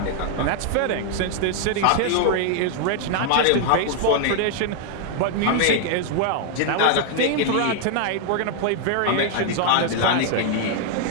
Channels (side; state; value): both; different; correlation 0.00